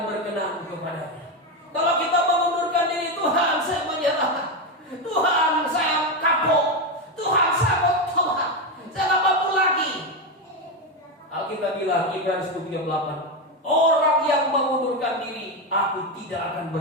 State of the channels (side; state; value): both; normal; correlation 0.10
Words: berkenan kepadanya. Kalau kita mengundurkan diri, Tuhan saya menyerah, Tuhan saya kapok, Tuhan saya mau tobat, saya tak mampu lagi. Alkitab bilang Ibrani 10:38, orang yang mengundurkan diri, aku tidak akan